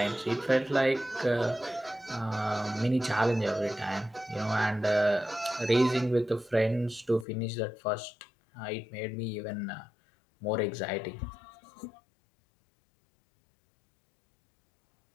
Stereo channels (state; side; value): drops out; right; at 7.2 s